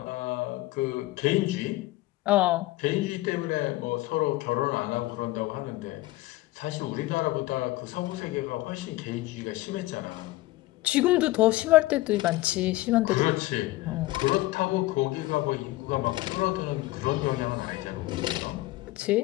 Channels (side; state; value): right; quieter; 18.5 dB